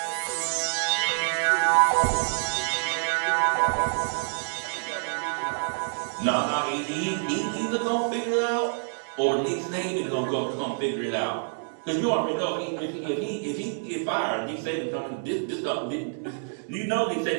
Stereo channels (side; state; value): left; silent; digital silence